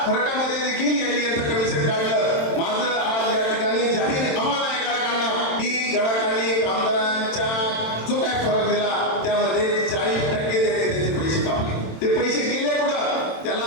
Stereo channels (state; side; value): late; right; 27 ms